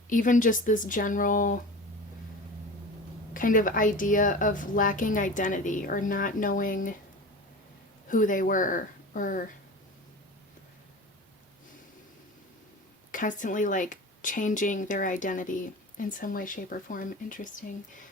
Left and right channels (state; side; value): normal; both; correlation 0.33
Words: even just this general kind of idea of lacking identity, or not knowing who they were, or constantly like changing their identity in some way, shape, or form. Interesting.